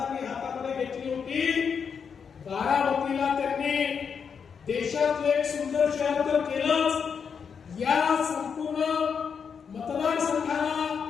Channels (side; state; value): right; quieter; 6.5 dB